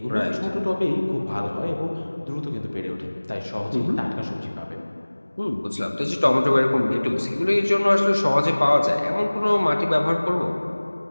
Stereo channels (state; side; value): inverted; both; correlation -1.00